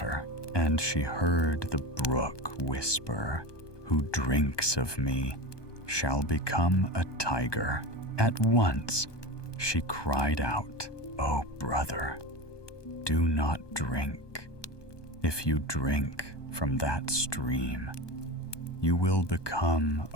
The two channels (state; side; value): late; right; 1.2 ms